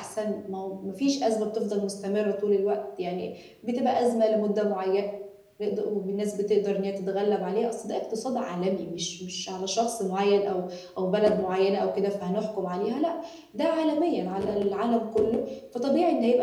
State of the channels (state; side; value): identical; both; correlation 1.00